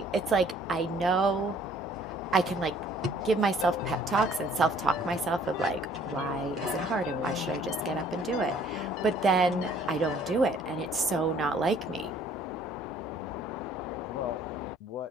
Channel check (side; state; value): both; normal; correlation 0.58